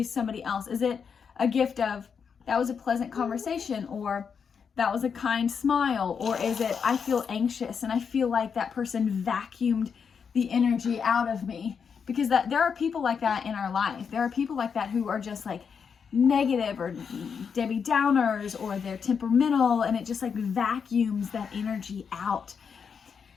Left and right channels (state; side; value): quieter; right; 6.4 dB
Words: somebody else? Is it a gift of, that was a pleasant conversation, or that was a kind smile, or is it, I feel anxious and I feel like that person vacuumed the energy out of me? Because there are people like that in our life. There are people like that who are just like negative or Debbie Downers, or they're temperamental, and it just like vacuums that energy out.